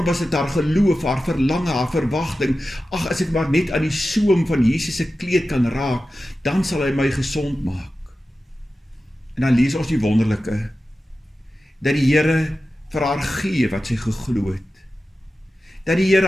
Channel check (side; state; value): both; normal; correlation 0.94